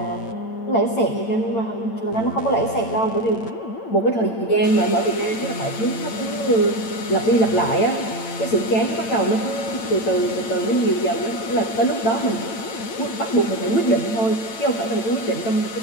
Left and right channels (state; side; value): late; right; 8.9 ms